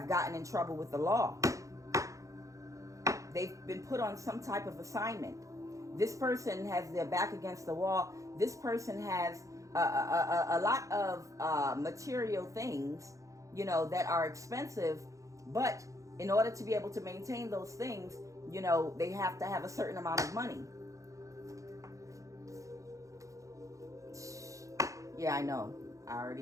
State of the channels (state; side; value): late; left; 0.16 ms